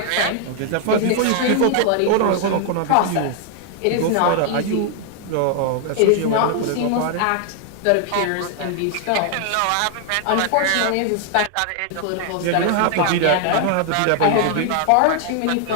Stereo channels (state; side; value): different; both; correlation 0.00